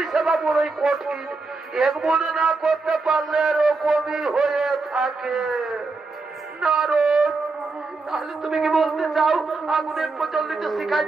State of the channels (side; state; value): left; quieter; 3.8 dB